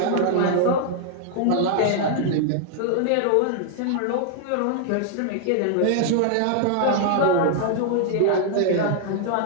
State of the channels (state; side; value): different; both; correlation 0.00